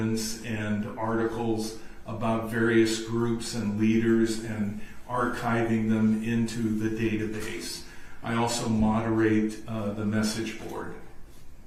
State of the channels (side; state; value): both; identical; correlation 1.00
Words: and articles about various groups and leaders and archiving them into the database. I also moderate the message board.